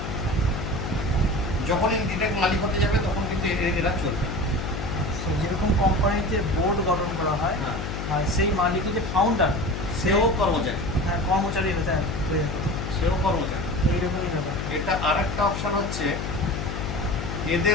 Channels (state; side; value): noise; left; hum, 5 dB below the sound